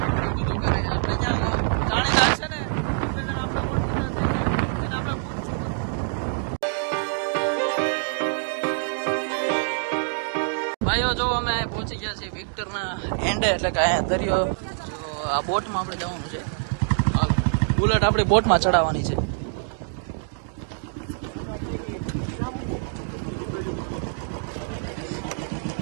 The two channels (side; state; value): left; silent; digital silence